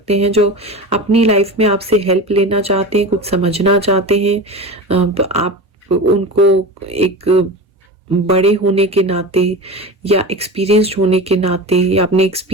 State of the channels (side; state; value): both; normal; correlation 0.28